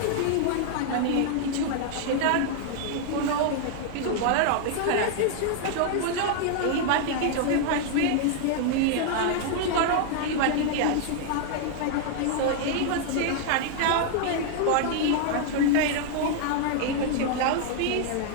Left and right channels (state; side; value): different; both; correlation -0.01